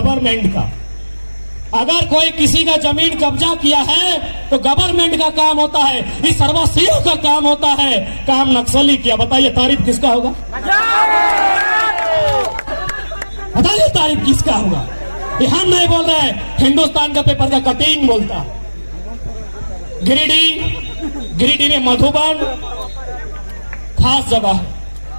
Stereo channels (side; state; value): both; inverted; correlation -1.00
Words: का। अगर कोई किसी का जमीन कब्जा किया है तो गवर्नमेंट का काम होता है, इस सर्वस्व का काम होता है। काम नक्सली किया, बताइए तारीफ किसका होगा? बताइए तारीफ किसका होगा? ये हम नहीं बोल रहे हैं, हिंदुस्तान का पेपर का कटिंग बोलता। गिरिडीह में मधुबन खास जगह है।